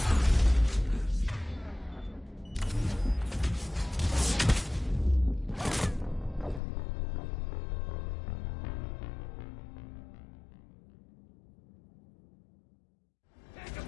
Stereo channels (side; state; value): right; drops out; at 6.6 s